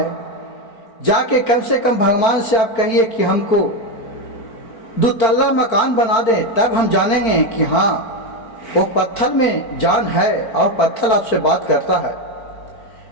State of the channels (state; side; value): late; right; 4.4 ms